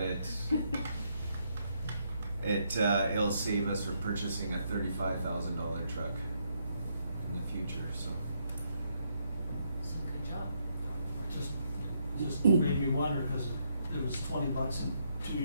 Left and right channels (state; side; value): inverted; both; correlation -0.75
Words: it. It'll save us for purchasing a $35,000 truck in the future, so. So good job. Just made me wonder, cause it was $20 in 2